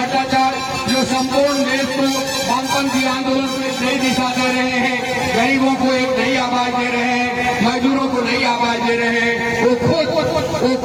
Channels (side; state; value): both; identical; correlation 1.00